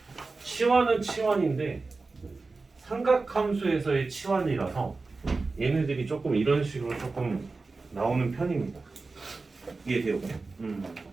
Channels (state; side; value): quieter; left; 3.8 dB